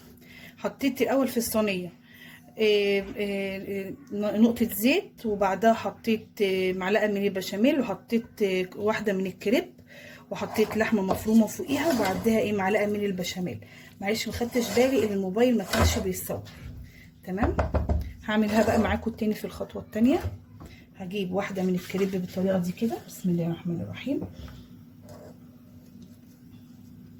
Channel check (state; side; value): identical; both; correlation 1.00